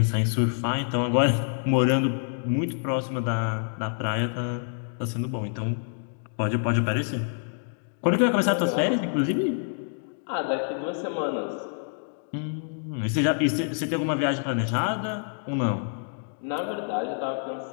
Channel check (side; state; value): right; silent; digital silence